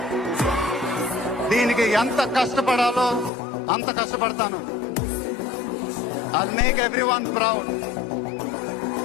దీనికి ఎంత కష్టపడాలో అంత కష్టపడతాను. I'll make everyone proud.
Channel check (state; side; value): drops out; right; at 3.3 s